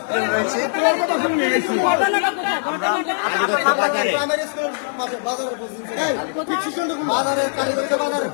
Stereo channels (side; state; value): right; silent; digital silence